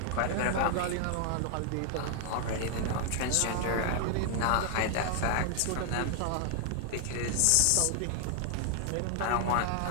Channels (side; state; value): both; different; correlation 0.00